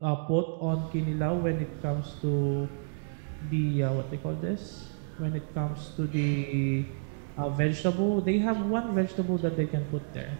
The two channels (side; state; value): left; silent; digital silence